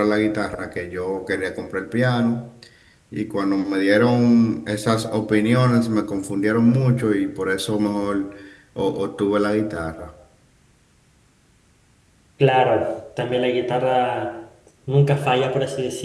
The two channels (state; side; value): identical; both; correlation 1.00